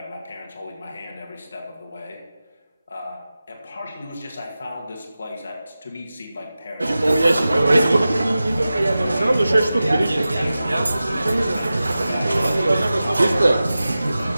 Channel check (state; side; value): inverted; both; correlation -0.95